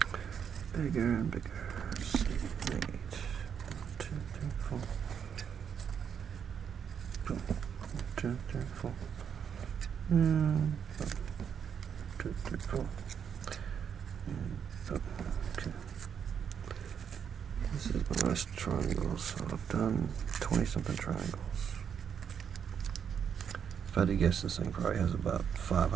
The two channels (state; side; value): quieter; left; 7.7 dB